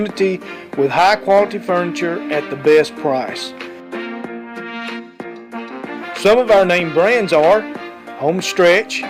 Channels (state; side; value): identical; both; correlation 1.00